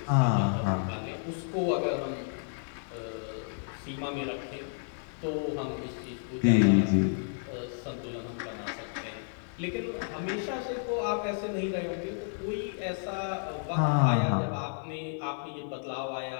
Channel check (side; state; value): right; silent; digital silence